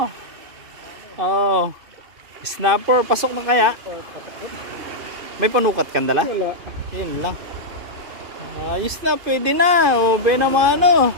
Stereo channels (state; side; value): late; left; 2.5 ms